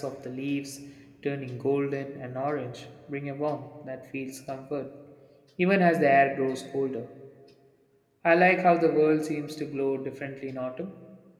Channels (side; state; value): both; identical; correlation 1.00